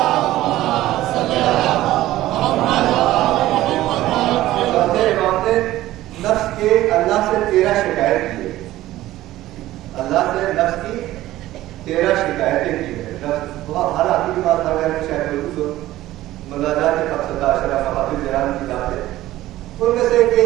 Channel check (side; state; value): left; quieter; 15.4 dB